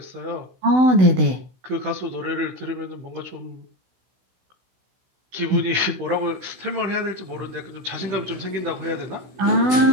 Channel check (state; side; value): late; left; 16 ms